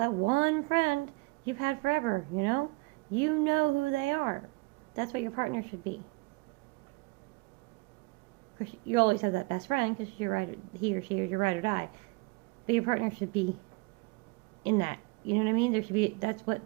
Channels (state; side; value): quieter; left; 26.3 dB